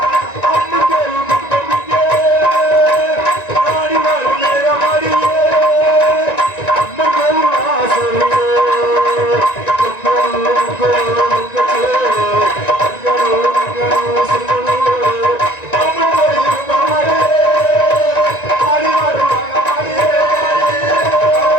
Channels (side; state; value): right; late; 1.9 ms